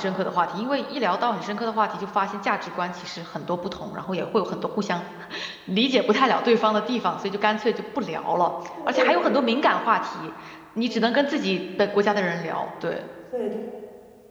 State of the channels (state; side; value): identical; both; correlation 1.00